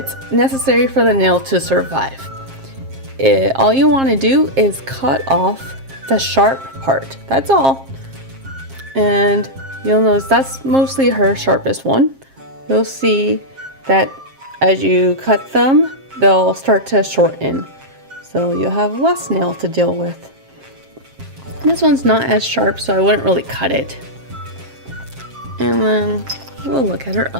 necessary for the nail to survive. All you want to do is cut off the sharp part, that's all. And you'll notice that's mostly her sharpest one. You'll see that as you cut them, they'll start to shorten. So you'll have less nail to deal with. This one's not as sharp, so I wouldn't really cut it. And then we'll look at her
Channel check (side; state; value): left; late; 7.5 ms